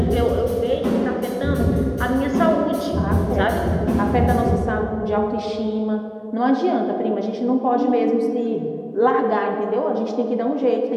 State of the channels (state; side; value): identical; both; correlation 1.00